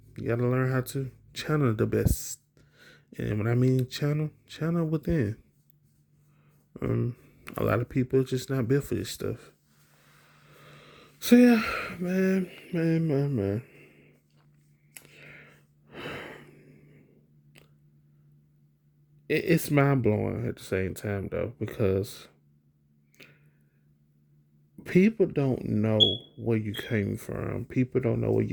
You got to learn how to channel the best. And when I mean channel within. Um, a lot of people just not built for this stuff. So yeah, man. It's mind blowing at the same time though, because people don't know where you came from. People don't know what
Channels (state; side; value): identical; both; correlation 1.00